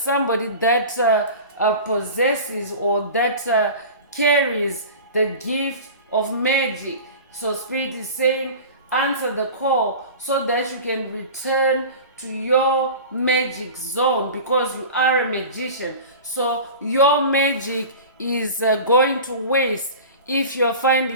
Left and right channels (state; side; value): inverted; both; correlation -0.35